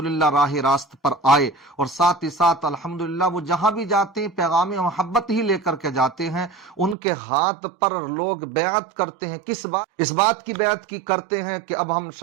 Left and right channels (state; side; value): drops out; left; at 7.0 s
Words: राह रास्त पर आए। और साथ ही साथ अल्हम्दुलिल्लाह वो जहां भी जाते हैं पैगाम मोहब्बत ही लेकर के जाते हैं। उनके हाथ पर लोग बैत करते हैं, किस बात, इस बात की बैत की करते हैं कि अब हम